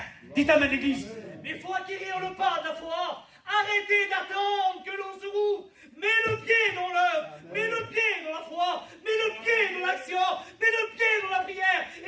Dites amen, l'église. Mais il faut acquérir le pas de la foi. Arrêtez d'attendre que l'on se rouvre. Mets le pied dans l'œuvre, mets le pied dans la foi, mets le pied dans l'action, mets le pied dans la prière,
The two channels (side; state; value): both; identical; correlation 1.00